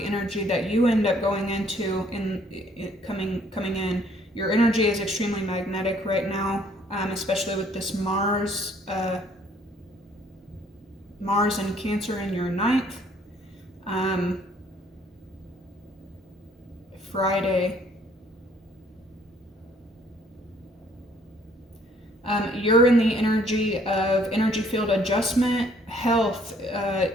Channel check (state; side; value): normal; both; correlation 0.62